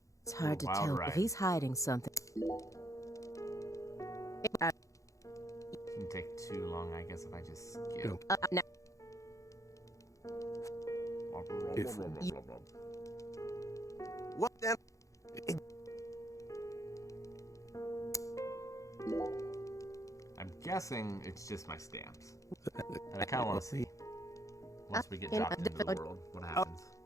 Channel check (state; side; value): late; right; 0.15 ms